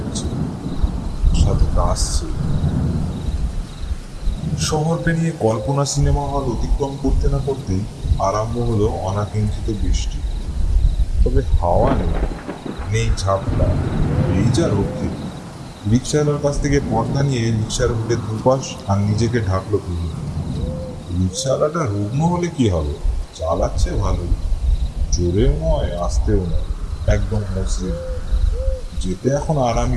সাথে কাশছে। শহর পেরিয়ে কল্পনা সিনেমা হল অতিক্রম করতে না করতেই আরম্ভ হলো অনাকাঙ্ক্ষিত বৃষ্টি। তবে হাওয়া নেই, নেই ঝাপটা, এই যা রক্ষে। রিক্সাওয়ালার কাছ থেকে পর্দা নিয়ে রিক্সার বুকে দুপাশ আর নিজেকে ঢাকলো তুলি। রিক্সাওয়ালাটা রুগ্ন হলে কি হবে, চালাচ্ছে ভালোই, জোরেও নয় আস্তেও নয়, একদম মসৃণ। যেতে এখন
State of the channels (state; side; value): identical; both; correlation 1.00